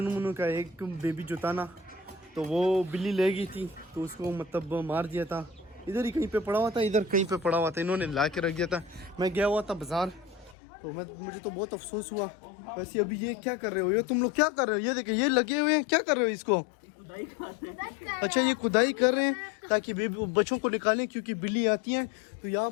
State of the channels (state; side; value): drops out; right; at 10.6 s